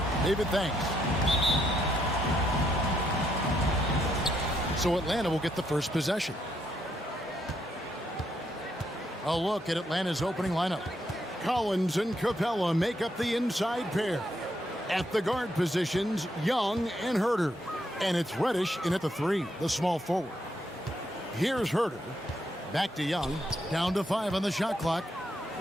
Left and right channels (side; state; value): both; normal; correlation 0.76